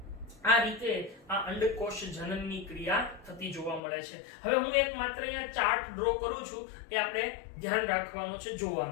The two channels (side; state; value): right; drops out; at 3.8 s